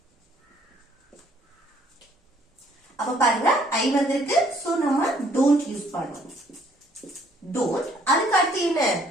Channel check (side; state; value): both; normal; correlation 0.63